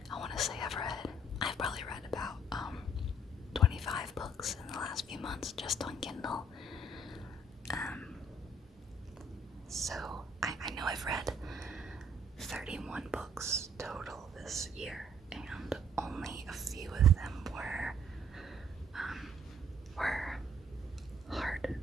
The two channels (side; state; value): both; normal; correlation 0.62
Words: I want to say I've probably read about 25 books in the last few months just on Kindle. So I know I've read 31 books total this year, and only a few of them were